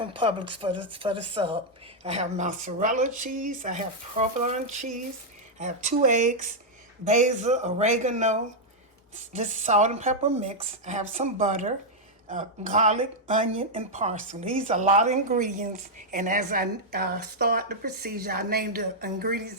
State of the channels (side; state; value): both; normal; correlation -0.03